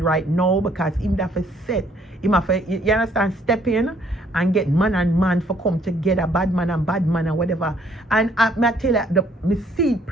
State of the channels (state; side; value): normal; both; correlation 0.64